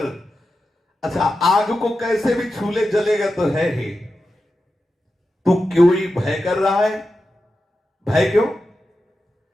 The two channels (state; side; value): normal; both; correlation 0.91